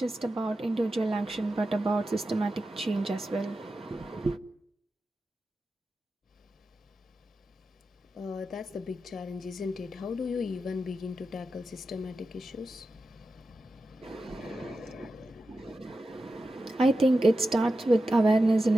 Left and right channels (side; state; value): both; normal; correlation 0.91